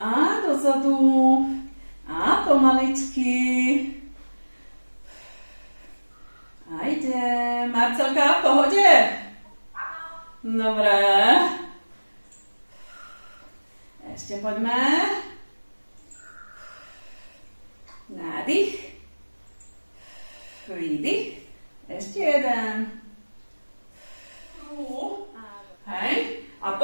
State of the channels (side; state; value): both; inverted; correlation -1.00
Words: a dozadu a pomaličky. A idem. Marcelka, v pohode? Dobre. Ešte poďme. Nádych. Výdych. Ešte jeden. Hej. A